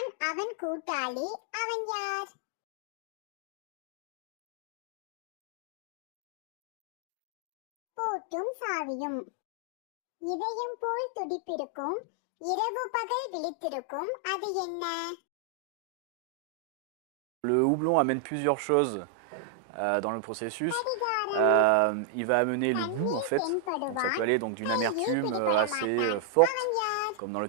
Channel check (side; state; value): both; different; correlation 0.00